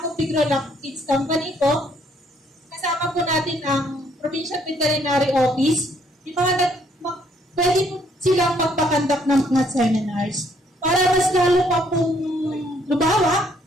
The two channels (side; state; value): both; normal; correlation 0.67